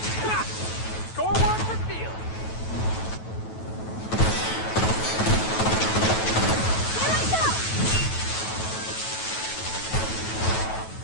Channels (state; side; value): late; right; 9.2 ms